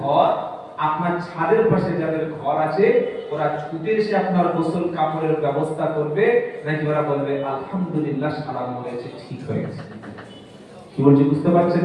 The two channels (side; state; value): both; identical; correlation 1.00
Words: আপনার ছাদের পাশে যাদের ঘর আছে, ওরা ছুটে এসে আপনার গোসল কাপড়ের ব্যবস্থা করবে, নাকি ওরা বলবে আলহামদুলিল্লাহ সালাম হয়েছে, ঠিক হয়েছে? কি বলছি বুঝতে পারছেন